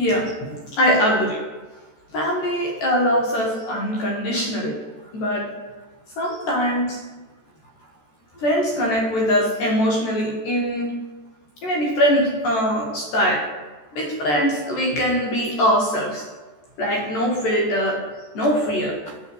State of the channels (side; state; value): right; late; 14 ms